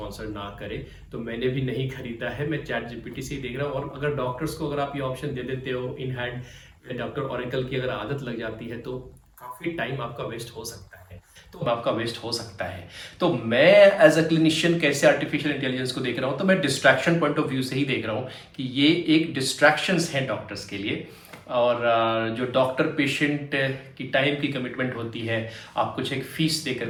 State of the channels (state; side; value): identical; both; correlation 1.00